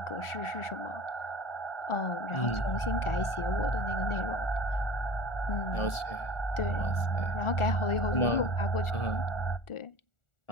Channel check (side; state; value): right; late; 1.4 ms